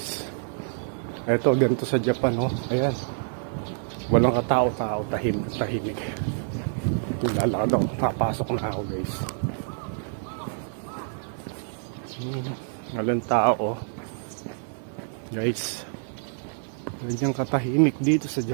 Ito ganito sa Japan, oh. Ayan. Walang katao-tao, tahimik. Lalakad ako, papasok na ako guys. Walang tao, oh. Guys, ganyan katahimik dito sa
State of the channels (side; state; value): left; silent; digital silence